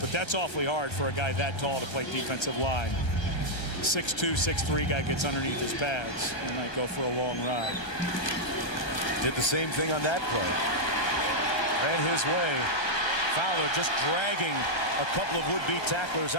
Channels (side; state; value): right; late; 1.3 ms